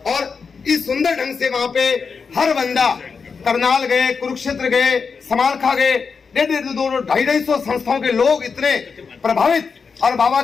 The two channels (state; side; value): quieter; right; 5.4 dB